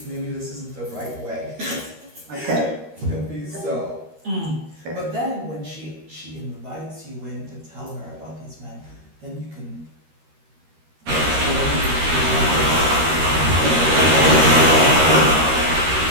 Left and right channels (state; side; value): late; left; 13 ms